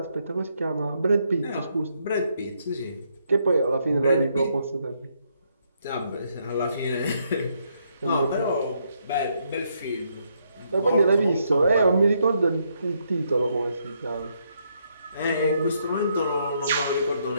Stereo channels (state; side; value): inverted; both; correlation -0.75